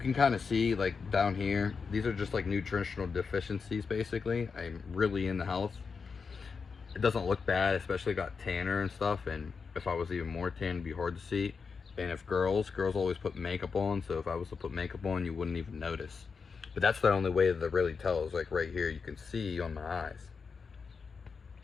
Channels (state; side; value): quieter; right; 5.3 dB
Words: kind of see, like, down here, these are just like nutritional deficiencies basically. I'm really into health. It doesn't look bad, especially got tanner and stuff, and if I was even more tan, it'd be hard to see. And if girls always put makeup on, so if I was to put makeup on, you wouldn't even notice. But that's the only way that it really tells. Like right here, you can see on my eyes.